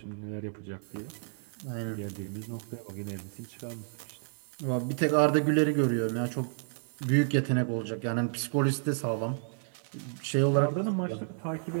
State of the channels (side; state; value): left; silent; digital silence